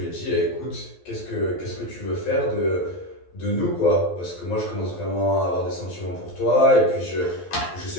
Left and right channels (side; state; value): right; late; 12 ms